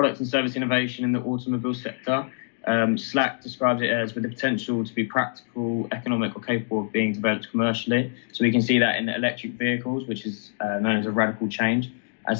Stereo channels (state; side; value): silent; right; digital silence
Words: and service innovation in the automobile sector, Slack describes it as with the potential to be practical, economic or capable of being developed commercially. So we can see that in electric vehicles, which is known as a radical change,